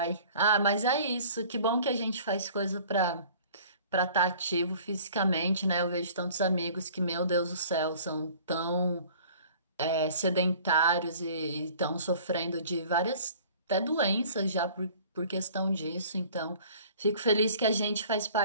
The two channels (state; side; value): inverted; both; correlation -0.49